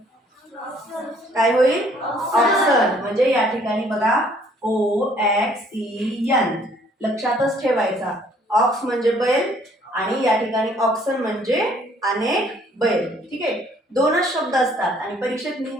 काय होईल? ऑक्सन. म्हणजे या ठिकाणी बघा OXEN लक्षातच ठेवायचा. ऑक्स म्हणजे बैल आणि या ठिकाणी ऑक्सन म्हणजे अनेक बैल. ठीक आहे, दोनच शब्द असतात आणि परीक्षेत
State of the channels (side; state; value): both; normal; correlation 0.61